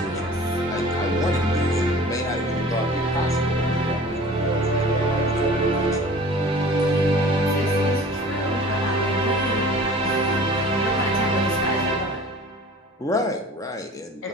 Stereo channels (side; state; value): both; normal; correlation 0.44